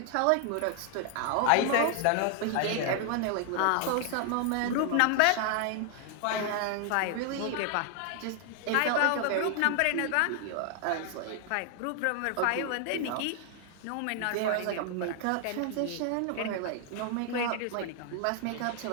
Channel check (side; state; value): both; different; correlation 0.00